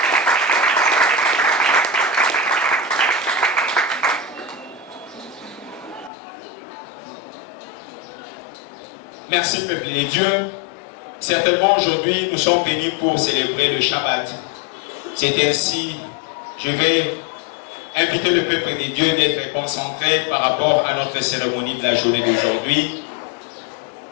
Merci, peuple de Dieu. Certainement aujourd'hui, nous sommes venus pour célébrer le Shabbat. C'est ainsi, je vais inviter le peuple de Dieu d'être concentré par rapport à notre cérémonie de la journée d'aujourd'hui.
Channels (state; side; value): drops out; right; at 6.1 s